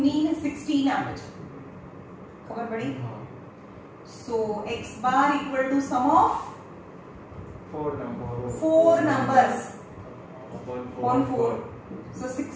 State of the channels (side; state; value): both; identical; correlation 1.00